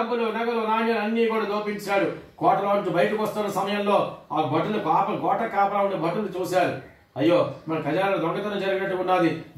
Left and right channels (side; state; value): both; identical; correlation 1.00